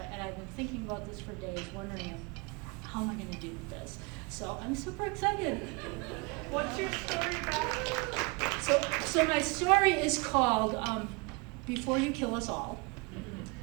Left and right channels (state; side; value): quieter; left; 29.2 dB